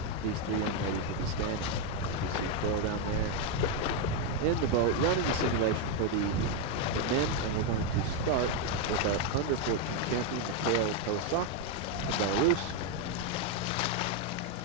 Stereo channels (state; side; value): normal; both; correlation 0.02